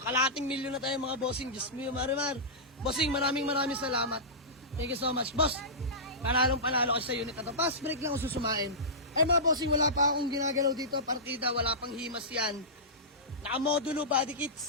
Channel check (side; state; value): both; normal; correlation -0.17